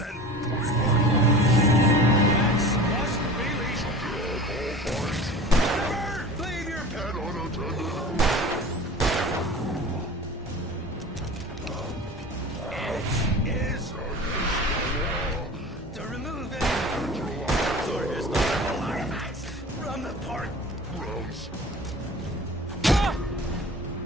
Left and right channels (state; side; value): normal; both; correlation 0.38